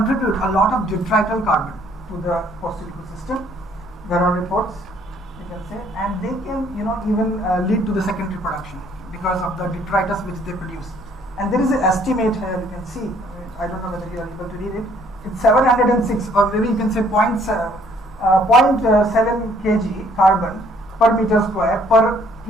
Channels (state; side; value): normal; both; correlation 0.62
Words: a lot of detrital carbon to the coastal ecosystem. There are reports, you can say, and they can even lead to the secondary production because of the detritus which they produce. And there is an estimate here, you can see. I don't know whether you are able to read it. It's 706, or maybe you can say 0.7 kg carbon per meter square per